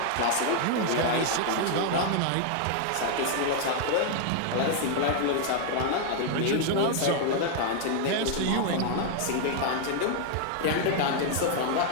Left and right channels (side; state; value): both; different; correlation 0.00